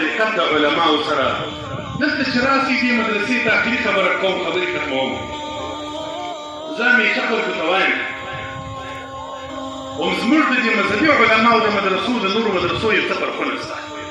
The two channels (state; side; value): identical; both; correlation 1.00